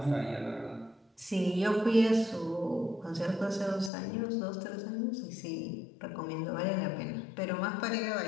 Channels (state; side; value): drops out; right; at 3.9 s